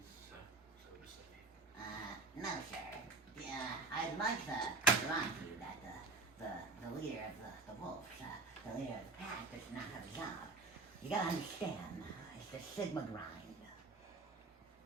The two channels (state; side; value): quieter; left; 3.1 dB